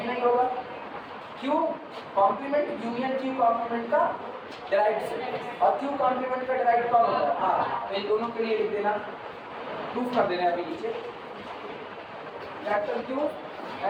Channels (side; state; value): both; identical; correlation 1.00